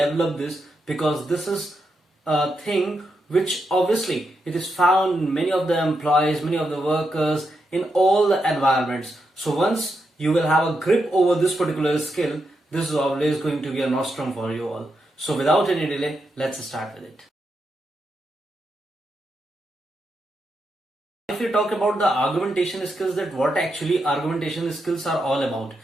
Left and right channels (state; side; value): normal; both; correlation 0.84